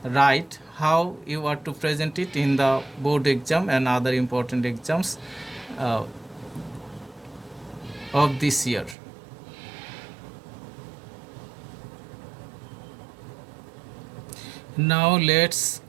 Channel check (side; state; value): left; drops out; at 9.0 s